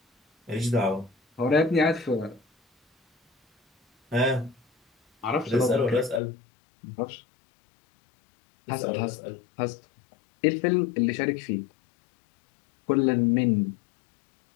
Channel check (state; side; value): drops out; right; at 6.2 s